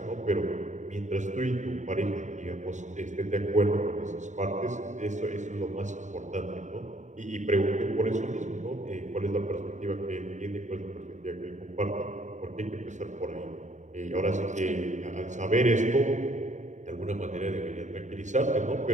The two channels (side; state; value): left; late; 0.35 ms